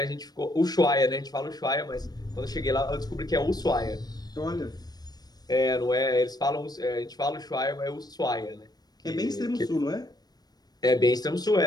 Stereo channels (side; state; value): right; late; 0.19 ms